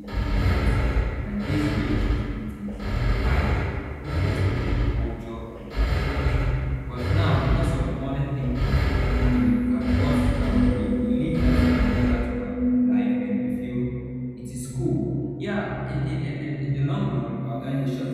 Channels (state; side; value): identical; both; correlation 1.00